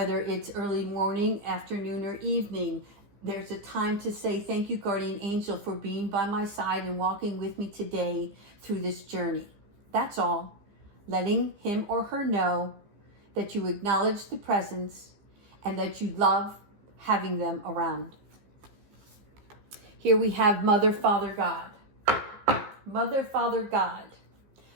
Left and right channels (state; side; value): late; left; 15 ms